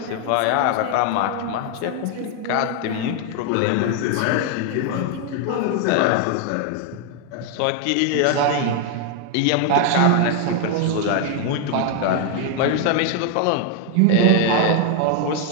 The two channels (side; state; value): both; different; correlation 0.00